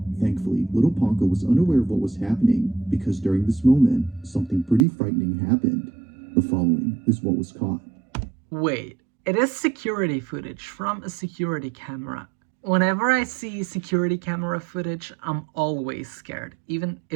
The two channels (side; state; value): left; drops out; at 4.9 s